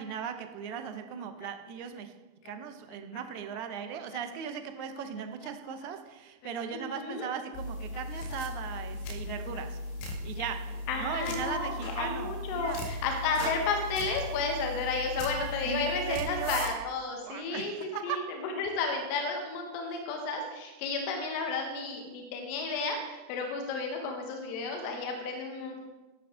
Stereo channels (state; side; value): late; right; 31 ms